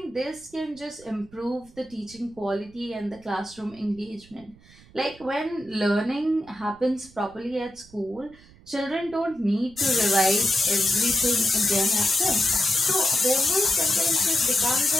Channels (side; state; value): right; noise; rumble, 24 dB below the sound